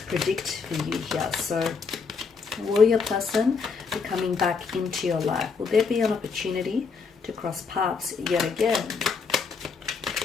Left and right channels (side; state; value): right; quieter; 5.2 dB